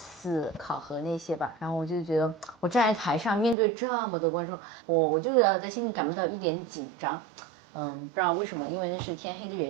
考核那些吧，然后我就觉得我站在台上面对这么多观众，我就在心里感不到一点紧张。不知道为什么，因为那是天黑的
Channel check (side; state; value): left; drops out; at 3.6 s